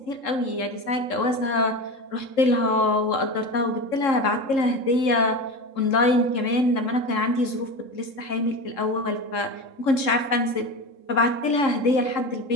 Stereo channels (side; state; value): right; late; 3.7 ms